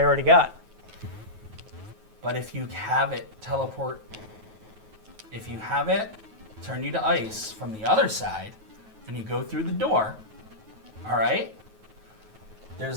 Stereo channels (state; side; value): late; left; 9.3 ms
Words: already got. But if you have it teleport, if you have it turn you to ice from the other side, and you go through the door, all right?